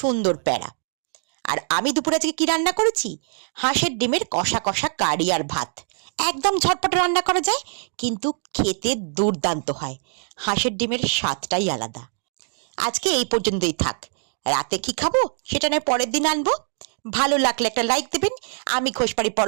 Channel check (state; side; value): silent; left; 63 dB below the other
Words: প্যাড়া। আর আমি দুপুরে আজকে কি রান্না করেছি? হাঁসের ডিমের কষা কষা কারি আর ভাত। একদম ঝটপট রান্না করা যায়, কিন্তু খেতে দুর্দান্ত হয়। হাঁসের ডিমের স্বাদটাই আলাদা। আজকে এই পর্যন্তই থাক। রাতে কি খাবো সেটা নয় পরের দিন আনবো। ভালো লাগলে একটা লাইক দেবেন। আমি ঘোষবাড়ি